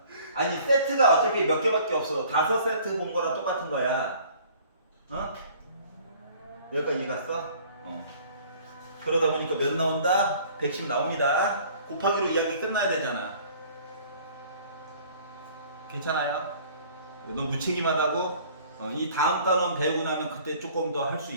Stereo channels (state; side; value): inverted; both; correlation -0.52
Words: 아니 세트가 어차피 몇 개밖에 없어. 5세트 본 거랑 똑같은 거야. 어? 여기까지 이해 갔어? 어. 그러다 보니까 몇 나온다? 110 나옵니다. 곱하기로 이야기 끝나야 되잖아. 괜찮아요? 너 무책임하다고? 이 다음 단원 배우고 나면 그때 조금 더 할 수